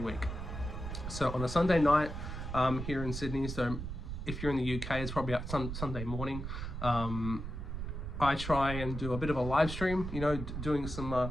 week. So on a Sunday night here in Sydney, so if you're in the UK, it's probably Sunday morning. I try and do a bit of a live stream, doing some,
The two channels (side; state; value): right; noise; rumble, 6 dB below the sound